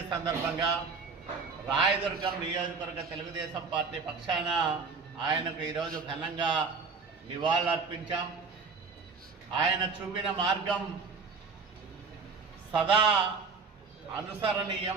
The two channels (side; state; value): left; quieter; 4.8 dB